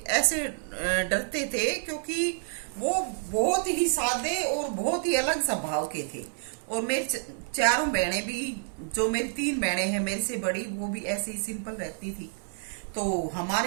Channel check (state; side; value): silent; left; digital silence